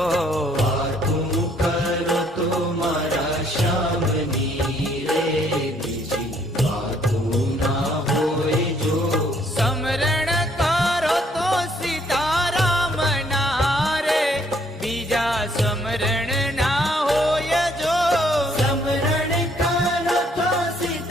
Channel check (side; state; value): both; normal; correlation 0.66